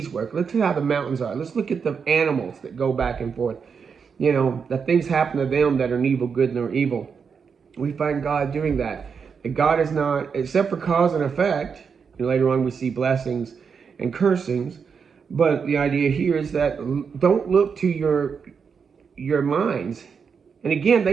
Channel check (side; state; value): left; quieter; 6.1 dB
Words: work. Let's look how the mountains are. Let's look at the animals that go back and forth. You know, that things happen to them that are neither good nor evil. We find God doing that. That God is not, except for cause and effect, and later on we see blessings and cursings, but the idea here is that don't look to your minds. And again,